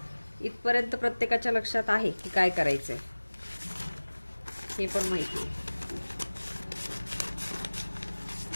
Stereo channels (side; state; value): both; inverted; correlation -1.00